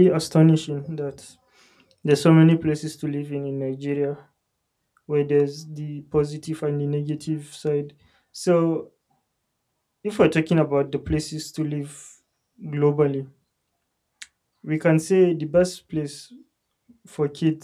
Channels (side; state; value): both; identical; correlation 1.00